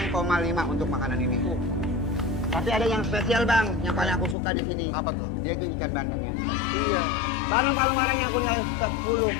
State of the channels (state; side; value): drops out; right; at 4.4 s